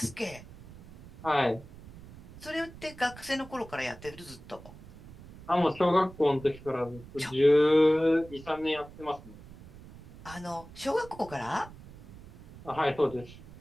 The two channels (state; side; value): noise; right; rumble, 18 dB below the sound